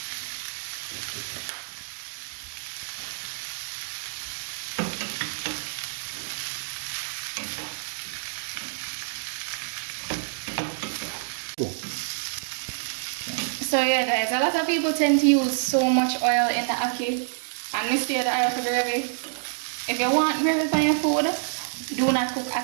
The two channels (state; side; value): silent; left; digital silence